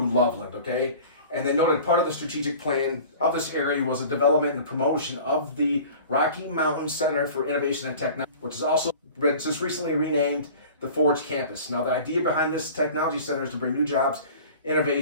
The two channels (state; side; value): inverted; both; correlation -0.43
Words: Loveland, okay? And they noted part of the strategic plan of this area was a development and promotion of the Rocky Mountain Center for Innovation and Technology, which is also just recently renamed the Forge Campus. Now, the idea behind this technology center is to bring new jobs,